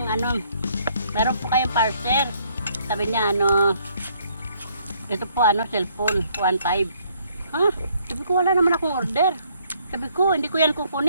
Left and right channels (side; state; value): both; inverted; correlation -0.66